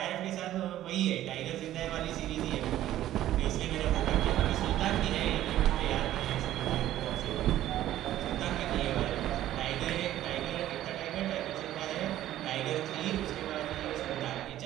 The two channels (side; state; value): left; quieter; 13.3 dB